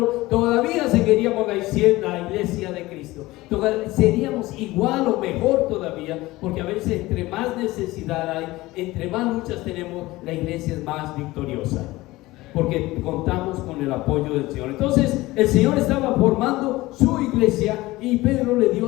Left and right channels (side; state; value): right; quieter; 19.1 dB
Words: todavía seguiríamos la iglesia de Cristo. Seríamos igual o mejor todavía, porque a veces entre más necesidad hay, entre más luchas tenemos, la iglesia es más victoriosa, porque contamos con el apoyo del Señor. Entonces el Señor estaba formando su iglesia y Pedro le dio